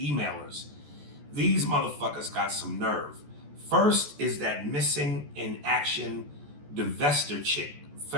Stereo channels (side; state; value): left; late; 14 ms